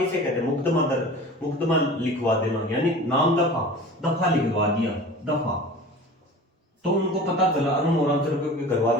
कहते हैं, मुकदमा लिखवा देना, यानी नाम दफा लिखवा दिया, दफा, तो उनको पता चला अरुण और अंचल के घर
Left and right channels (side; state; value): both; normal; correlation 0.39